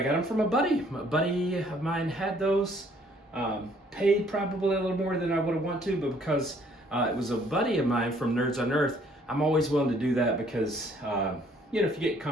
got them from a buddy. A buddy of mine had those, paid probably a little more than I would have wanted to, but because it was a buddy of mine from Nerds on Earth, I'm always willing to do that because, you know, if you get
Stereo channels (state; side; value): normal; both; correlation 0.62